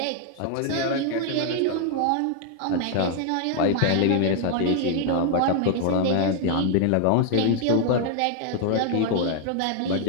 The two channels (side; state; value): both; different; correlation 0.00